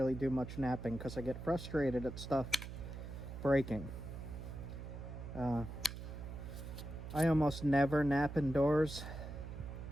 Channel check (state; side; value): noise; right; hum, 9 dB below the sound